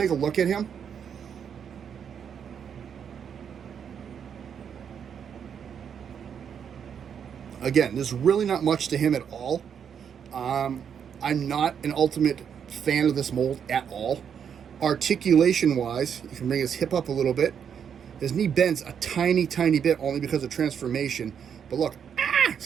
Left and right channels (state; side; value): quieter; left; 7.8 dB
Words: a look at him. Again, there's really not much to him at all. I'm not an ultimate fan of this mold at all. Articulation-wise, you can bring his hip up a little bit. His knee bends a tiny, tiny bit only because of transformation. But look, he's